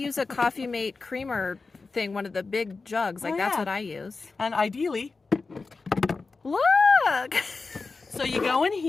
a Coffee Mate creamer thing, one of the big jugs. Like, that's what I use. And ideally... Look! So you go in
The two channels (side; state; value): right; quieter; 4.1 dB